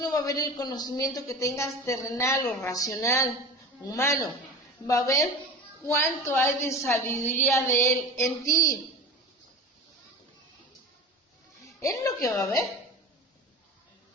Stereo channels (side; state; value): both; normal; correlation 0.33